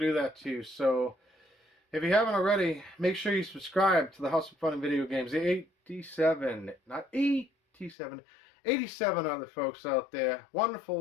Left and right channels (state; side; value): drops out; right; at 8.0 s